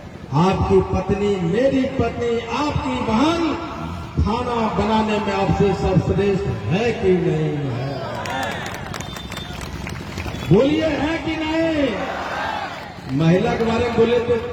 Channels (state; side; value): identical; both; correlation 1.00